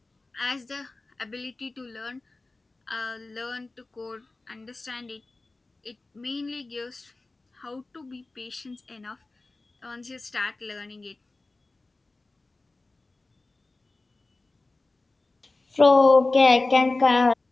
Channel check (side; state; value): right; quieter; 3.2 dB